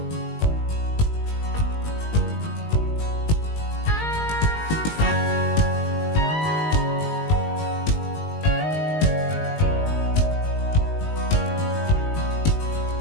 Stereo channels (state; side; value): late; right; 19 ms